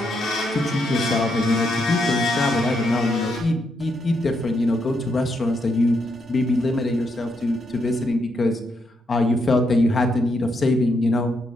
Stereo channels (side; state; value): both; normal; correlation 0.79